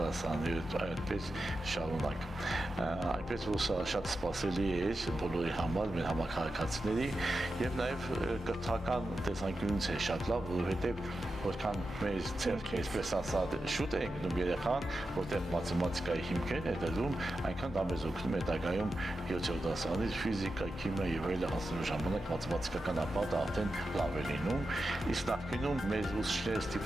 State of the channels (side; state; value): both; normal; correlation 0.90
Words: այդպես շարունակ։ Այնպես որ սա շատ սպասելի է բոլորի համար, մեր համակարգացիների եւ նաեւ կրթական տեսանկյունից է շատ լավ, որովհետեւ որքան մեր ցերկը այսպես ասած շուտ է ընկնում երեխան, որտեղ մաթեմատիկայի հիմքերն է դրում, այնքան դա մեզ օգնում է հետագայում 7-րդ դասարանից ֆիզիկա, քիմիա եւ այլն հասնելու ժամանակ մաթեմատիկական ապատը արդեն լավ է լինում, Իսկ նախկինում մեր ուսուցիչները